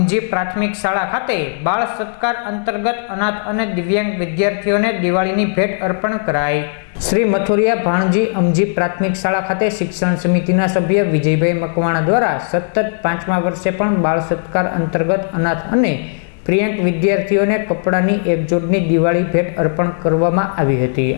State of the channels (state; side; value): silent; right; digital silence